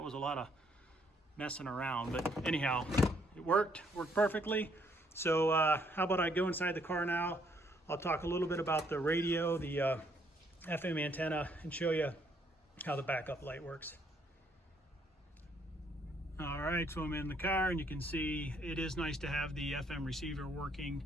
was a lot of messing around, but anyhow, it worked perfectly. So how about I go inside the car now? I'll talk a little bit about the radio, the FM antenna, and show you how the backup light works. All right, so I'm in the car and you can see it is nice to have the FM receiver working.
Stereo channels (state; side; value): normal; both; correlation 0.69